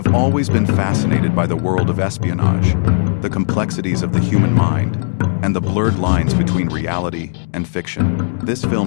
always been fascinated by the world of espionage, the complexities of the human mind, and the blurred lines between reality and fiction. This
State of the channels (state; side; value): silent; right; digital silence